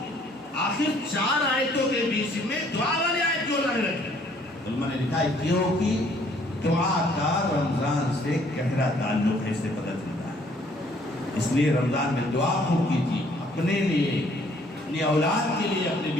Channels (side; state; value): both; normal; correlation 0.62